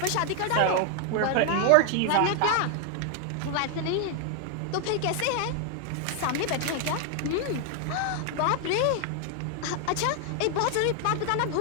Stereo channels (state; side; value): different; both; correlation 0.00